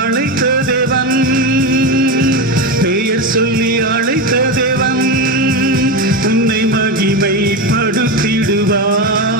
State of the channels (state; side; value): normal; both; correlation 0.17